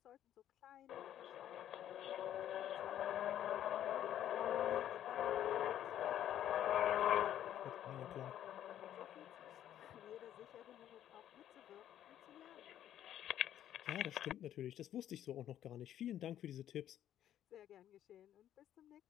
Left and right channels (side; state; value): right; quieter; 11.2 dB